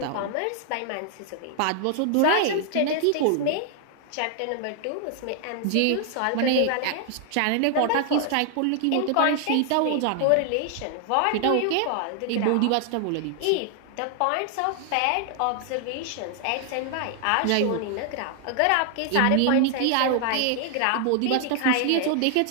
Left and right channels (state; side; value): different; both; correlation 0.00